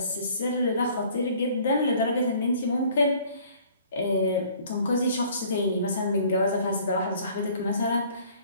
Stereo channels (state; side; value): inverted; both; correlation -0.55